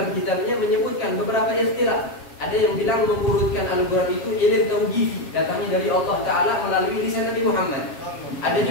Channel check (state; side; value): late; right; 7.4 ms